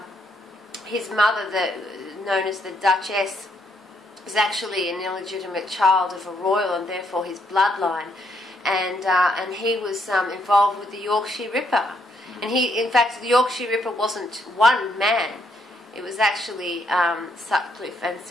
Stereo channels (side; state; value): both; normal; correlation 0.74